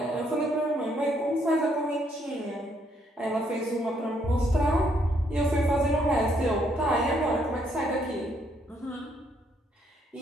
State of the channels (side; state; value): both; normal; correlation 0.71